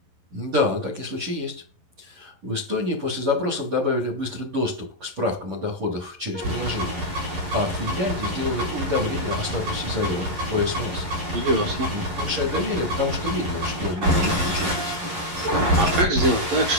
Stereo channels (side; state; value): left; late; 11 ms